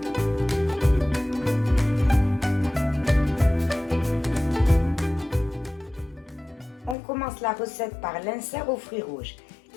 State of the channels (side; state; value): right; drops out; at 7.0 s